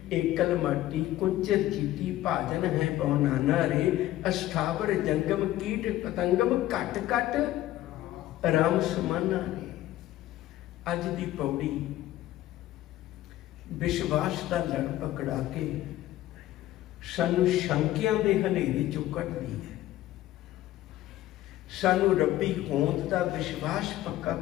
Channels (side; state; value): right; quieter; 14.6 dB